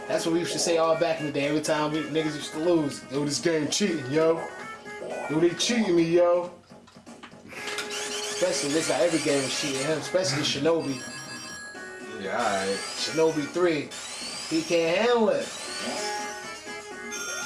That's what we used to say all back in the day. Every time niggas used to lose, yo, this game cheating, yo. Yo, they cheating me, yo. Especially this guy, every game was cheating him, especially Shinobi. alright. Shinobi 3. He can't handle it.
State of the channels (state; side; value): identical; both; correlation 1.00